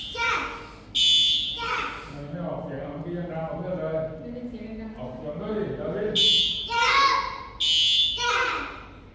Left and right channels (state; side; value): identical; both; correlation 1.00